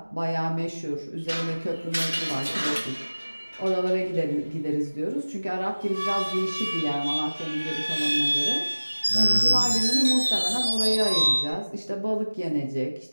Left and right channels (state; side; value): inverted; both; correlation -1.00